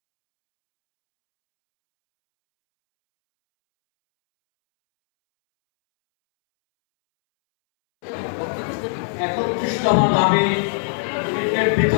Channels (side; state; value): right; silent; 65 dB below the other